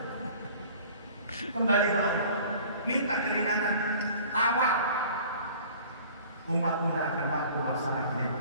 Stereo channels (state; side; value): inverted; both; correlation -0.47